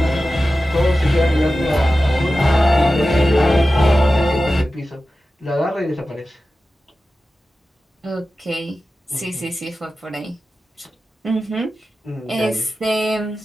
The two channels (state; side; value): normal; both; correlation 0.94